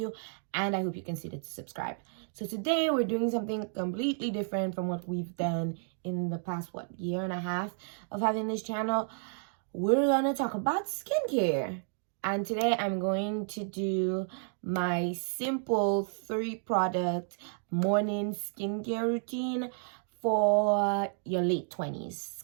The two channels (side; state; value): left; silent; 57 dB below the other